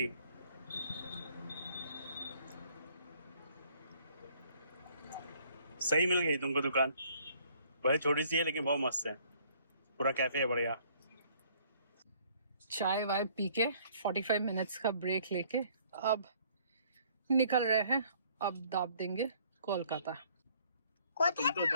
सही मिल गई तुमको दुकान, वही छोटी सी है लेकिन बहुत मस्त है, पूरा कैफे है बढ़िया। चाय वाय पी के 45 मिनट्स का ब्रेक लेके अब निकल रहे हैं। अब दाब देंगे कोलकाता। तुम तो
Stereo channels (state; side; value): inverted; both; correlation -0.61